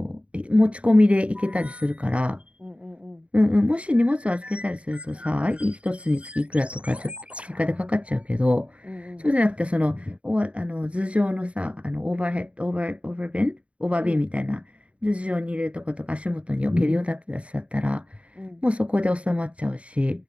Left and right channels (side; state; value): left; late; 0.062 ms